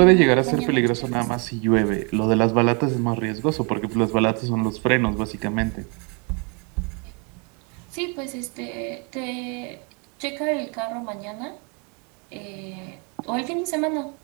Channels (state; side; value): quieter; left; 34.3 dB